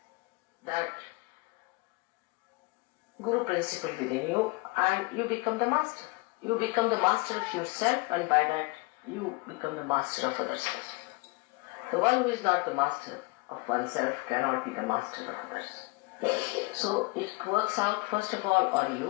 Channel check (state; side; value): quieter; right; 25.6 dB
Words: that Guru principle within you, and you become the master. You become the master of yourself, and by that you become the master of others. The one who is not the master of oneself cannot be the master of others. So it works out first of all on